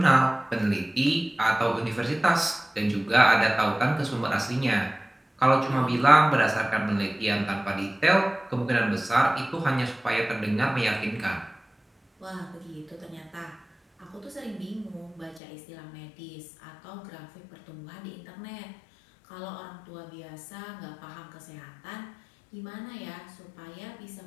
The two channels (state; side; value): drops out; right; at 15.4 s